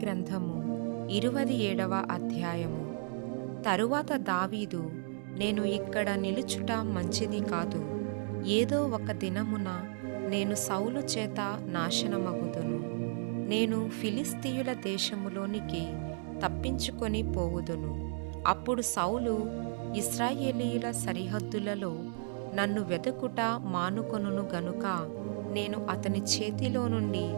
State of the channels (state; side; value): silent; left; 55 dB below the other